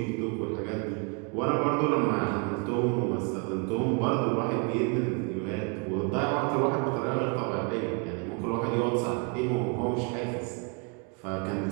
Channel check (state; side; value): quieter; left; 33.4 dB